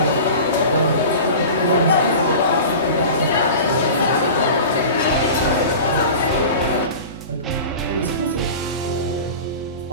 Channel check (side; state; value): both; inverted; correlation -0.36